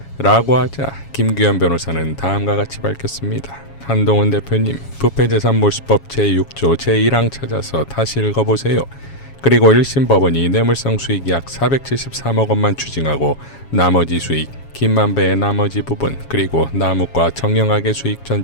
라고 하자 김규현 변호사는 다음과 같이 밝혔습니다. 한동훈 대표님, 부패재산 몰수법 제6조 제1항 찾아서 다시 읽어보세요. 그리고 1심 법원이 뇌물성 수익 약 473억 원만 추징하고 나머지 수익, 김만배의 나머지 부분, 그리고 남욱과 정영학의 수익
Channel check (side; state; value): right; late; 7.2 ms